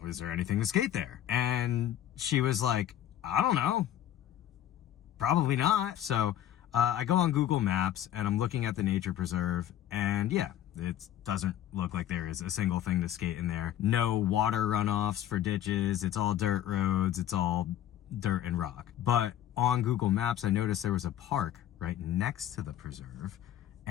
is there anything to skate there? And she was like, I don't know, probably not. So I go on Google Maps and I'm looking at the nature preserve, and yeah, it doesn't look like there is a single thing to skate in there. No water runoffs for ditches. It's all dirt roads. It's all dirt and rock. But on Google Maps, I noticed there was a park right next to the preserve.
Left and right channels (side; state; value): right; quieter; 11.6 dB